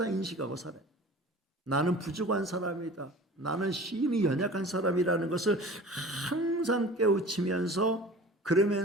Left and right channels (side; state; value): both; normal; correlation 0.41